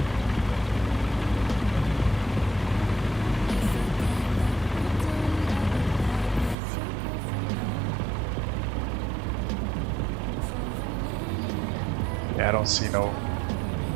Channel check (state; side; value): drops out; left; at 6.6 s